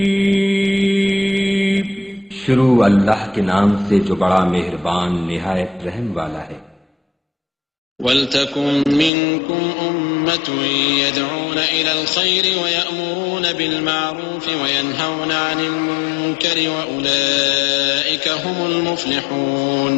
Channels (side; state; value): right; drops out; at 9.1 s